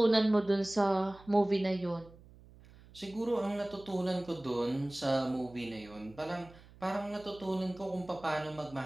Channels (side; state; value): right; noise; hum, 22 dB below the sound